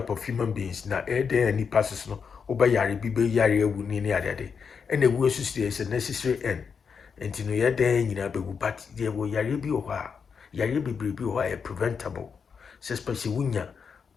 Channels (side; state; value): right; quieter; 6.1 dB